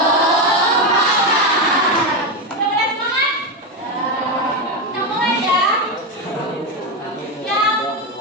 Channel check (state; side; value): normal; both; correlation 0.11